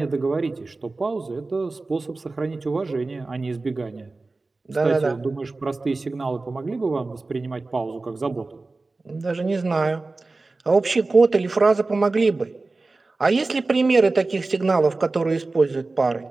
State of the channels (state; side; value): quieter; left; 3.5 dB